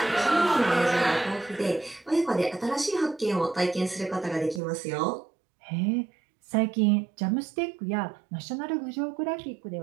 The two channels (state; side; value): drops out; left; at 4.6 s